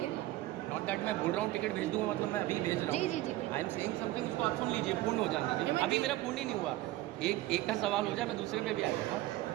नॉट दैट मैं बोल रहा हूँ टिकट भेज दूंगा मतलब मैं अभी भेज रहा हूँ। जी। आई एम सेइंग समथिंग, उसको आप सुन लीजिए, पूर्ण हो जाने दीजिए। अभी मेरा पूर्ण ही नहीं हुआ। एक का सवाल हो जाए मैं दूसरे पे भी आ जाऊँगा।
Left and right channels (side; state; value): left; quieter; 16.4 dB